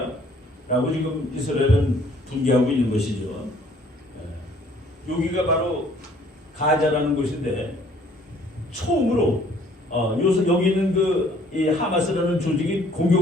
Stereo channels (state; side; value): normal; both; correlation 0.59